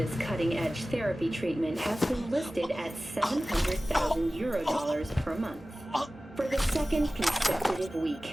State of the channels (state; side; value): normal; both; correlation 0.97